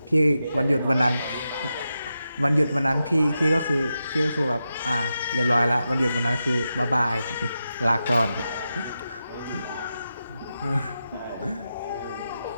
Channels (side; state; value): both; inverted; correlation -0.89